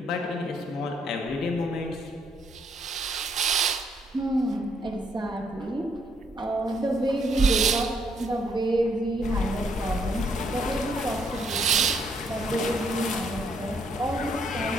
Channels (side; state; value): both; normal; correlation 0.70